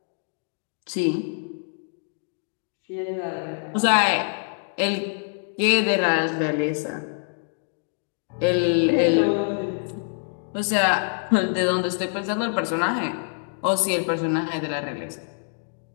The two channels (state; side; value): silent; right; digital silence